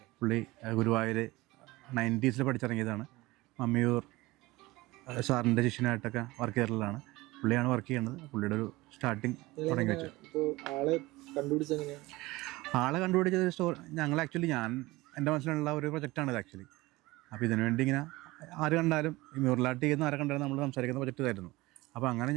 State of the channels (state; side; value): quieter; left; 20.4 dB